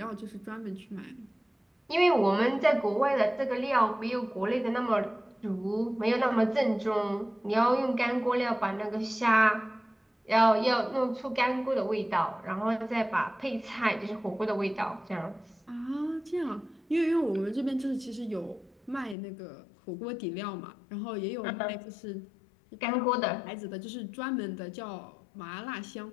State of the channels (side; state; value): right; drops out; at 19.2 s